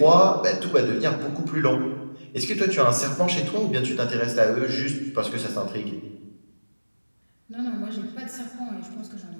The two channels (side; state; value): both; inverted; correlation -1.00